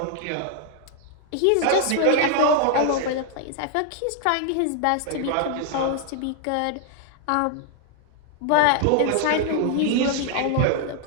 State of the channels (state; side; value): different; both; correlation 0.00